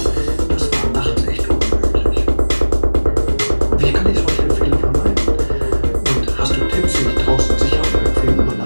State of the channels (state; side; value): inverted; both; correlation -1.00